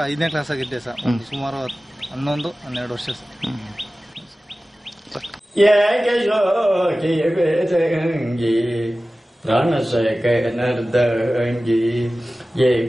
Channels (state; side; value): normal; both; correlation 0.96